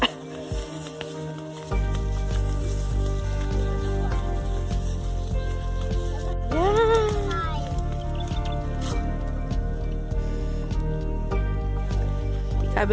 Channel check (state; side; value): identical; both; correlation 1.00